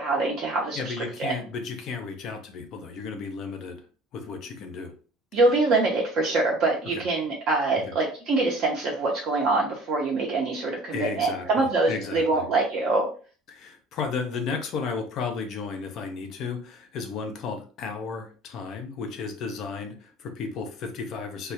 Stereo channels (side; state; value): both; normal; correlation 0.47